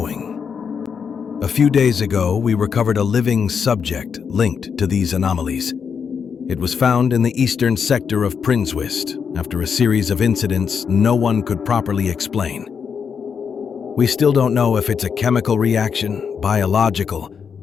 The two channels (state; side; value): quieter; right; 6.6 dB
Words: A few days ago, we recovered a living subject linked to these anomalies. It was found in the eastern sector of Prinswist after a series of incidents no one could properly explain. We still don't know if it's a chemical reaction, biological,